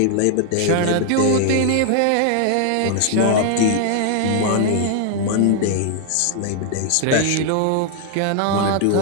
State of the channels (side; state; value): both; different; correlation 0.00